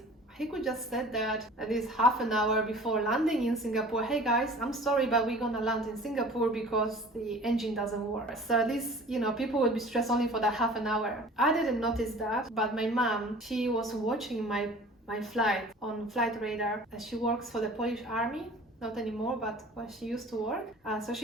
He could just said that at least half an hour before landing in Singapore, hey guys, I'm sorry, but we're gonna land in Singapore because the engine doesn't work. So at least, people would be stressed only for that half an hour. I didn't notice that, but my mom, she was watching my flight on Flight Radar. She works for the Polish Army. Not anymore, but when she used to work. So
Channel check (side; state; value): both; normal; correlation 0.45